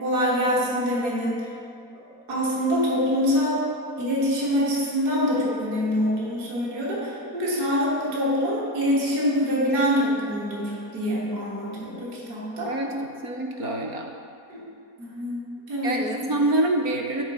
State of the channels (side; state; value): left; late; 4.2 ms